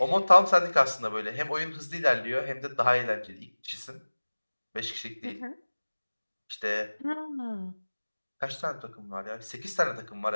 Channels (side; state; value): both; inverted; correlation -1.00